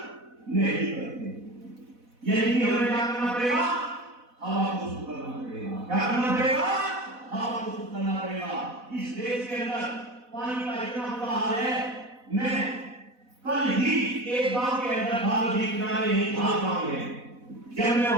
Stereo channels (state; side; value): late; left; 4.1 ms